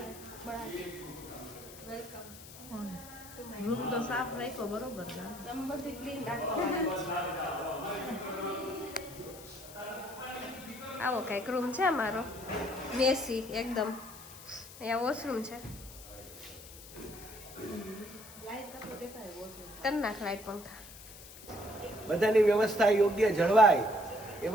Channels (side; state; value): left; noise; hiss, 16 dB below the sound